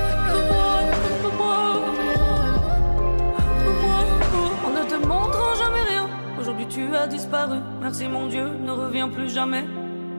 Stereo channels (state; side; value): inverted; both; correlation -1.00